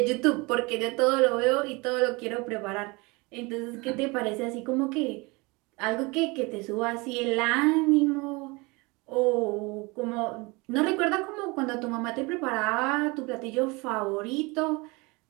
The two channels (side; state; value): left; quieter; 25.9 dB